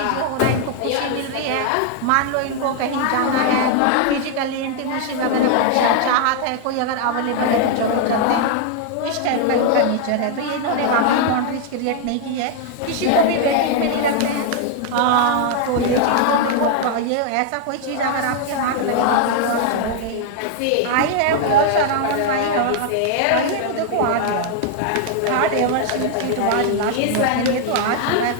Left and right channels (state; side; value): different; both; correlation 0.00